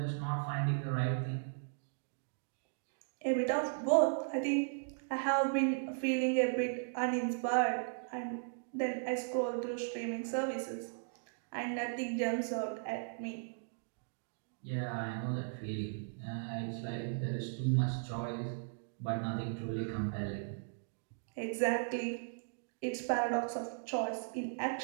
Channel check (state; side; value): silent; left; digital silence